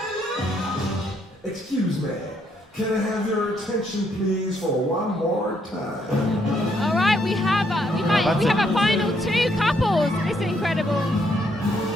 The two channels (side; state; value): both; normal; correlation 0.72